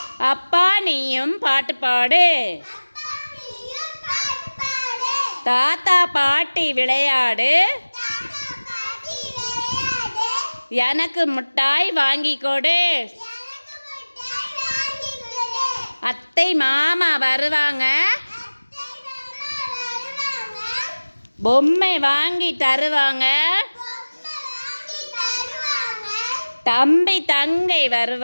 அப்பா நீயும் பாட்டு பாடு. தாத்தா பாட்டி விளையாடு, எனக்கு மிட்டாய் வாங்கி கொடு. அத்தை மாமா வருவாங்க, பொம்மை வாங்கி தருவாங்க. தம்பி தங்கை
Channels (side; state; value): both; inverted; correlation -1.00